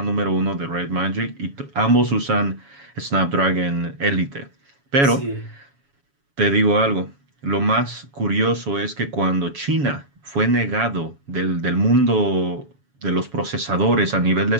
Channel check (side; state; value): left; late; 7.2 ms